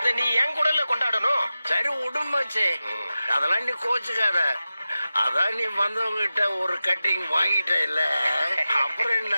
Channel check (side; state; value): both; inverted; correlation -0.94